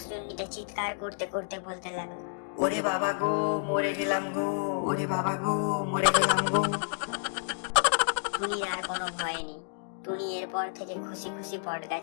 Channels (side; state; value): right; silent; digital silence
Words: চিৎকার করতে করতে বলতে লাগলো, ওরে বাবা গো, মরে গেলাম গো, ওরে বাবা গো, মরে গেলাম গো। টুনির আর কোনো ভয় নেই। টুনি এরপর থেকে খুশি খুশি বট